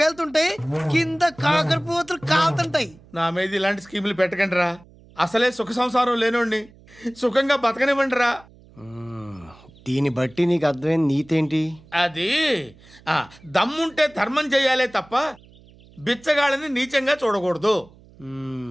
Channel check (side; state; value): right; noise; hum, 25 dB below the sound